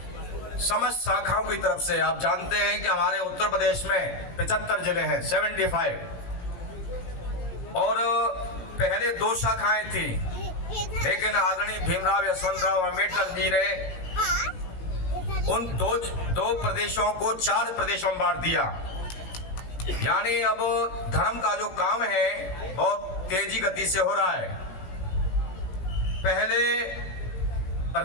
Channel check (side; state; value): right; late; 18 ms